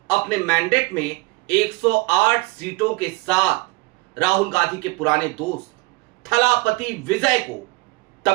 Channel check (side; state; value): left; quieter; 24.6 dB